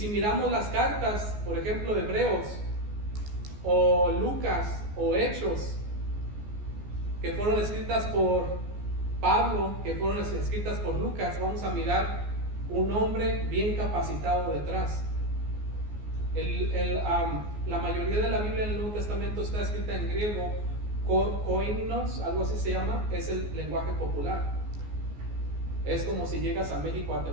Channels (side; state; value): left; late; 14 ms